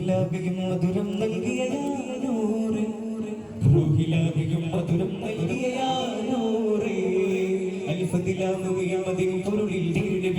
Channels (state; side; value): identical; both; correlation 1.00